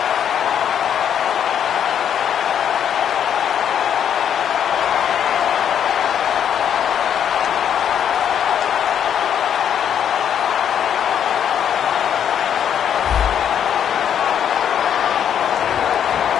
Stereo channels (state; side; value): quieter; right; 9.0 dB